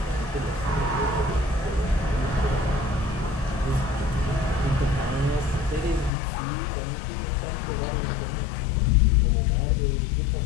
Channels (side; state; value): right; drops out; at 6.1 s